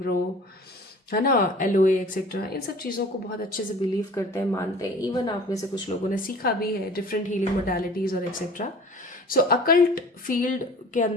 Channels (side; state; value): both; normal; correlation 0.45